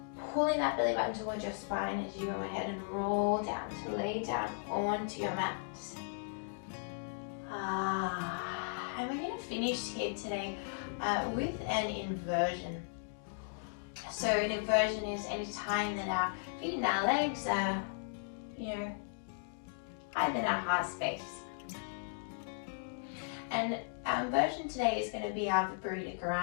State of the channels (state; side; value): silent; right; digital silence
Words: pulling that belly button towards your spine as you go ahead and roll down to lay down onto your mat. And we're going to finish here today with an inversion. So an inversion is any time that our feet and our legs are, higher than our heart space. And our inversion today is going to be our Viparita